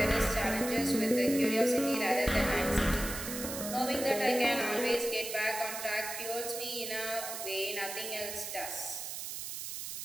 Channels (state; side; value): noise; right; hiss, 6 dB below the sound